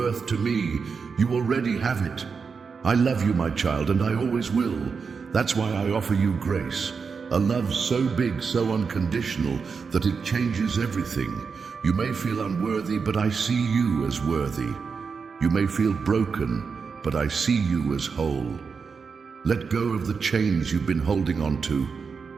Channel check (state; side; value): quieter; left; 5.4 dB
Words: to me. You already have it. I love you, my child, and I always will. That's why I offer you grace. A love so big, so unconditional, that it changes everything. You may feel unworthy, but I see you as worthy. You may feel broken, but I see you as whole. Let go of the chains you've been holding on to,